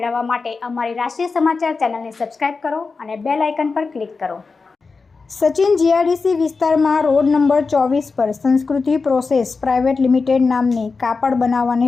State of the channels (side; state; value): right; quieter; 4.4 dB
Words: માટે અમારી રાષ્ટ્રીય સમાચાર ચેનલને સબસ્ક્રાઇબ કરો અને બેલ આઇકન પર ક્લિક કરો। સચિન જીઆઈડીસી વિસ્તારમાં રોડ નંબર 24 પર સંસ્કૃતિ પ્રોસેસ પ્રાઇવેટ લિમિટેડ નામની કાપડ